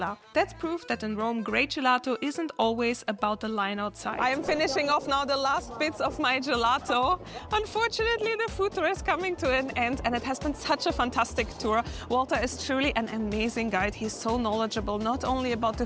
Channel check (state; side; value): identical; both; correlation 1.00